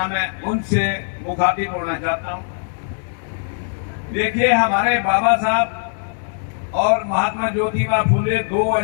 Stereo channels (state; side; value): silent; right; digital silence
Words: मैं उनसे मुखातिब होना चाहता हूँ। देखिए, हमारे बाबा साहब और महात्मा ज्योतिबा फुले दो